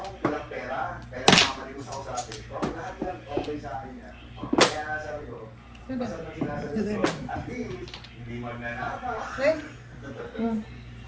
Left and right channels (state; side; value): identical; both; correlation 1.00